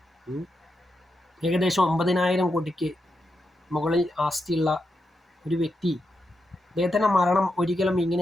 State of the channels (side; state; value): both; normal; correlation 0.85